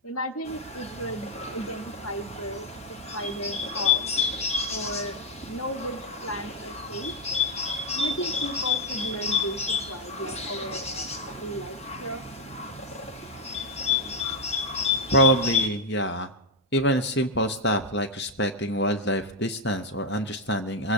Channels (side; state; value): both; normal; correlation 0.04